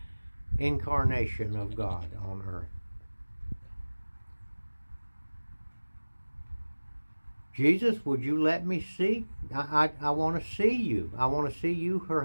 incarnation of God on earth. Jesus, would you let me see? I want to see you. I want to see you for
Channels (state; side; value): inverted; both; correlation -1.00